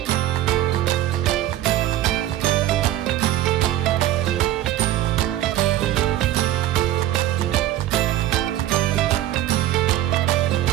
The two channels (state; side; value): quieter; left; 13.6 dB